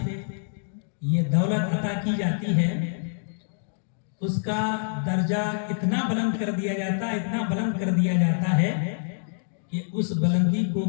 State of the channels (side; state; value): right; silent; digital silence